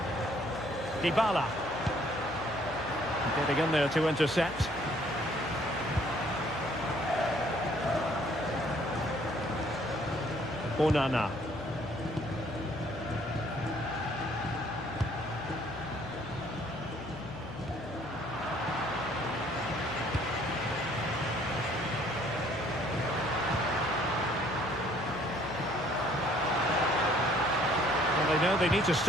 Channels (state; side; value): noise; left; hum, 14 dB below the sound